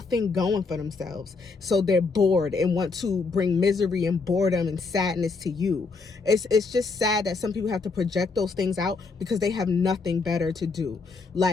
going for themselves, so they're bored and want to bring misery and boredom and sadness to you. It's just sad that some people have to project those things out because they have nothing better to do.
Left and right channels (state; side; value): quieter; right; 4.3 dB